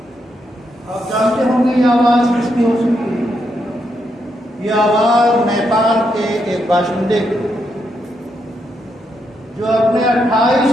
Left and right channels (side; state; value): both; normal; correlation 0.80